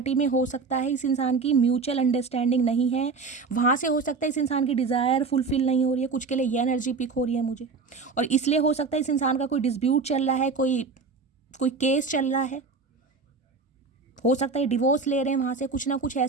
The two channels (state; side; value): quieter; left; 4.6 dB